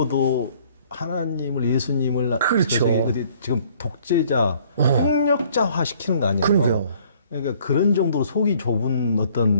하나님을 예수님을 그렇죠. 지금 독재자, 폭력자화 시키는 거 아니에요? 그러게요. 그러니까 그런 정도로 속이 좁은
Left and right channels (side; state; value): both; inverted; correlation -0.59